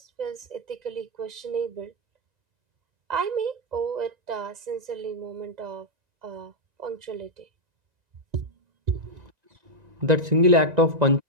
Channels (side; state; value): left; late; 1.9 ms